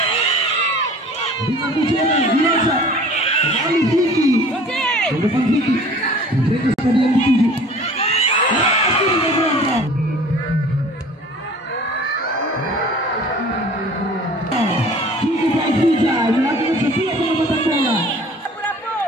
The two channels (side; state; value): both; normal; correlation 0.47